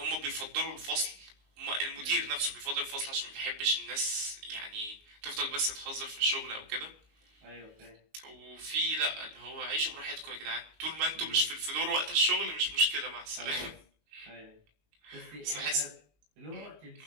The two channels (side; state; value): left; late; 19 ms